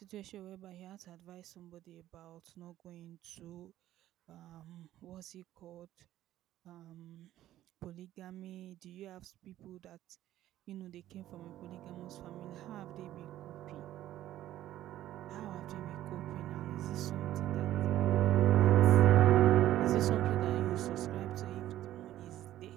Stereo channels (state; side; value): quieter; left; 13.5 dB